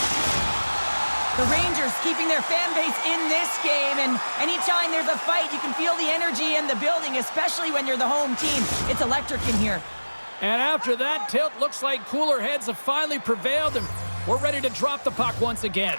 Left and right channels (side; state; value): both; inverted; correlation -1.00